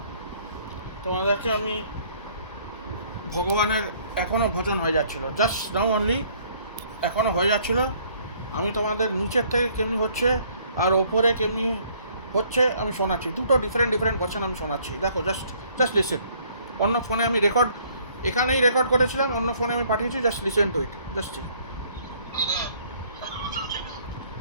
তোমাদেরকে আমি ভগবানের এখনও ভোজন হয়ে যাচ্ছিলো, জাস্ট নাও অনলি এখনও হয়ে যাচ্ছিলো। আমি তোমাদের নিচের থেকে কেমনি হচ্ছে আর ওপরে কেমনি হচ্ছে আমি শোনাচ্ছি। দুটো ডিফারেন্ট ভার্সন আমি শোনাচ্ছি। দেখো, জাস্ট লিসেন। অন্য ফোনে আমি এখানেই রেকর্ড করেছিলাম, অন্য ফোনে আমি পাঠিয়েছি। Just listen to it.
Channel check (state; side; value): inverted; both; correlation -0.61